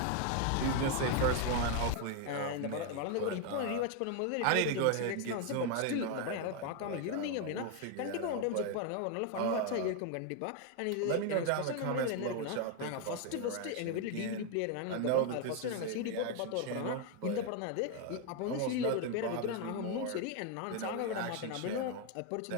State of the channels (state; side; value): different; both; correlation 0.01